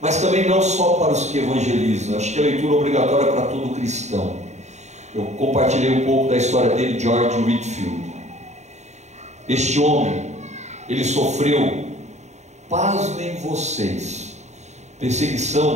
mas também não só para os que evangelizam. Acho que a leitura obrigatória é para todo cristão. Eu compartilhei um pouco da história dele, George Whitefield. Este homem, ele sofreu, pasmem vocês,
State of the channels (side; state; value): left; late; 0.33 ms